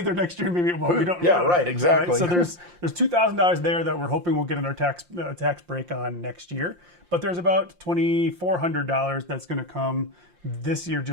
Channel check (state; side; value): late; left; 5.7 ms